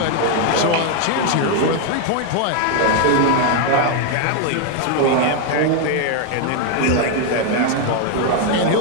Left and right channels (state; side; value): different; both; correlation 0.01